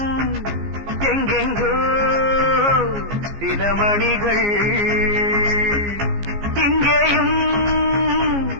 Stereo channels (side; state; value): left; late; 15 ms